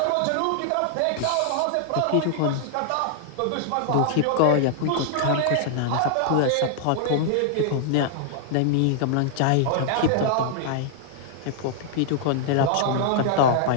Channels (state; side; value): different; both; correlation -0.01